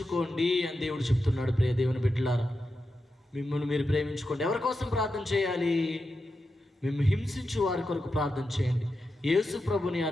అని దేవుడు చెప్తున్నాడు. ప్రియ దేవుని బిడ్డలారా, మిమ్మల్ని మీరు ప్రేమించుకోండి. ఎవరి కోసం ప్రార్థన చేయాలి? మేము హింసించు వారి కొరకు ప్రార్థన చేయండి. యేసు ప్రభుని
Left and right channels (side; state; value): both; normal; correlation 0.89